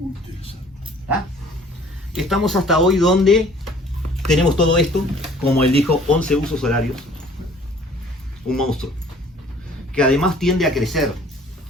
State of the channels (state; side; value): normal; both; correlation 0.53